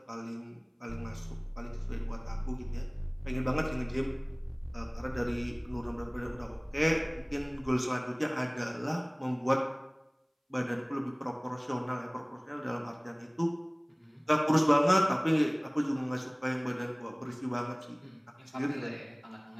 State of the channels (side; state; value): both; identical; correlation 1.00